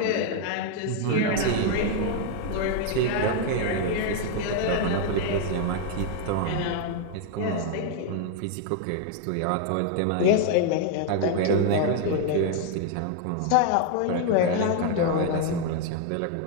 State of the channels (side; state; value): both; different; correlation 0.00